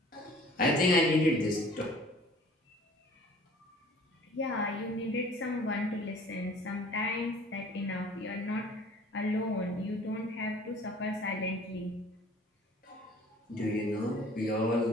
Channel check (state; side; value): normal; both; correlation 0.50